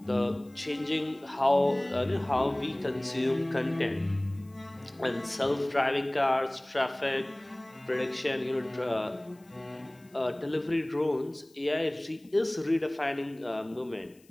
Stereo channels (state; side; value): noise; left; hiss, 30 dB below the sound